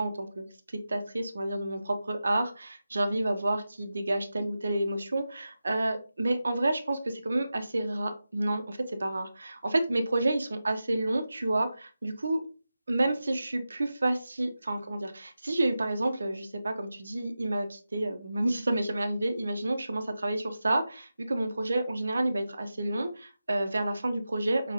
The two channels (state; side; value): inverted; both; correlation -0.92